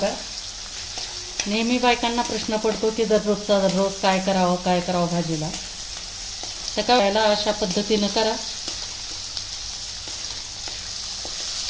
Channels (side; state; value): both; identical; correlation 1.00